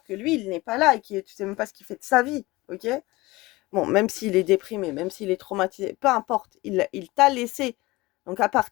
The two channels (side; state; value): right; quieter; 20.9 dB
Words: que lui, il n'est pas là et tu sais même pas ce qu'il fait de sa vie. Ok? Bon, même s'il est déprimé, même s'il est traumatisé, peu importe, il t'a laissé. Donc à